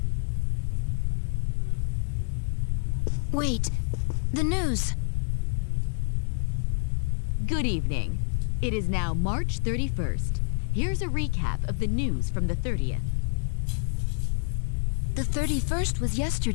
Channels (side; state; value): right; silent; digital silence